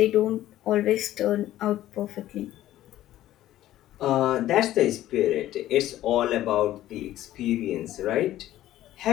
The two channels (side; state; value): right; quieter; 13.9 dB